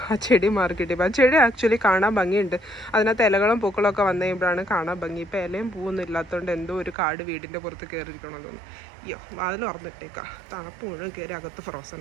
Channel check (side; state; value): left; drops out; at 7.0 s